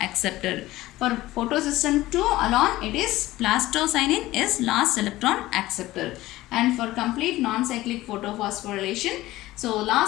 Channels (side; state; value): right; quieter; 17.0 dB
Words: acceptor. For photosystem 2 alone it is plastocyanin is last electron acceptor, and for complete non-cyclic photophosphorylation, so